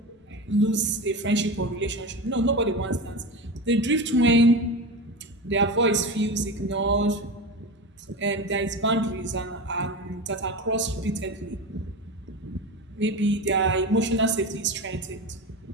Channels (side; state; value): both; normal; correlation 0.24